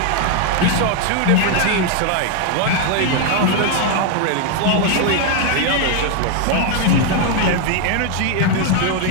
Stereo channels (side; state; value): both; different; correlation 0.01